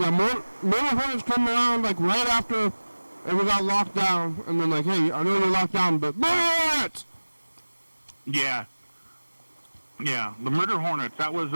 more hornets come around like right after we got locked down, and then like, hey, I know you're locked down, but bullets! Yeah, the murder hornets. That was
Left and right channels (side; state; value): both; inverted; correlation -1.00